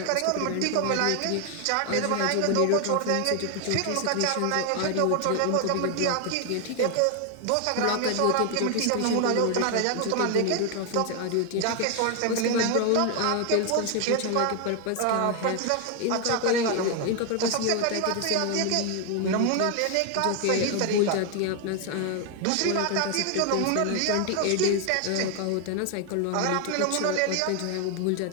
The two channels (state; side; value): different; both; correlation 0.01